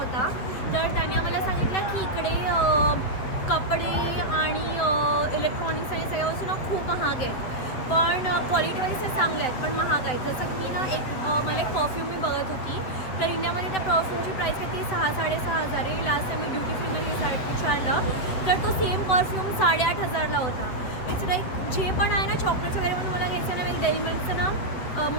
तर त्याने आम्हाला सांगितलं की इकडे कपडे आणि इलेक्ट्रॉनिक्स आणि सगळ्या वस्तू ना खूप महाग आहेत, पण क्वालिटीवाईज ते चांगले आहेत, पण महाग आहेत. जसं की ना मला एक परफ्यूम मी बघत होती, तर इंडियामध्ये त्या परफ्यूमची प्राईस किती 6-6.5 आहे. लास्ट टाइम मी ड्युटी फ्रीमध्ये विचारलं तर तो सेम परफ्यूम 8,500ला होता. इट्स लाईक जे पण आहे ना चॉकलेट्स वगैरे म्हणून मला घ्यायचं ना, मी डेअरी मिल्कचं ना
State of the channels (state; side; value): late; right; 8.0 ms